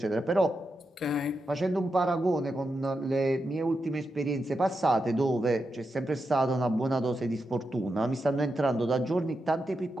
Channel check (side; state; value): both; normal; correlation 0.87